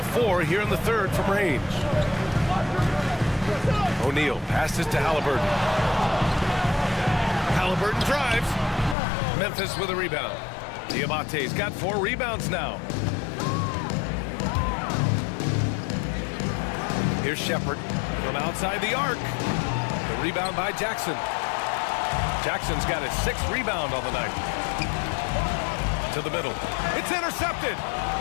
4 here in the third from range. O'Neal passes to Halliburton. Halliburton drives. Memphis with a rebound. Diabate's got 4 rebounds now. Here's Shepard from outside the arc. The rebound by Jackson. Jackson's got his 6th rebound on the night. To the middle. It's intercepted.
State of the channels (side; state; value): right; drops out; at 9.0 s